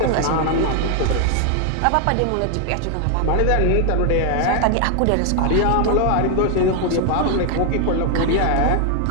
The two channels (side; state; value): both; different; correlation 0.00